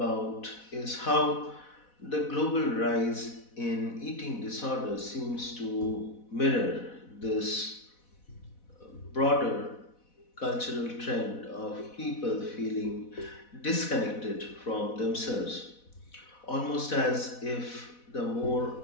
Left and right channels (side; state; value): right; late; 4.1 ms